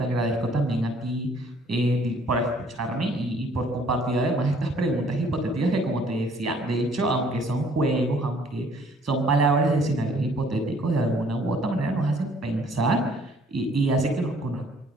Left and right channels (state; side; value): normal; both; correlation 0.60